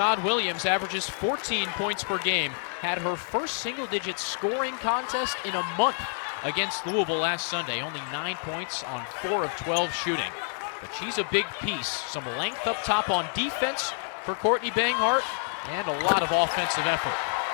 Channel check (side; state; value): right; silent; 59 dB below the other